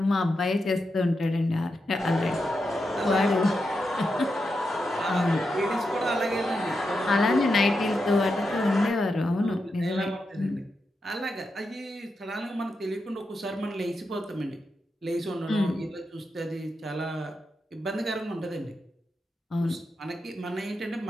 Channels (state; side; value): normal; both; correlation 0.87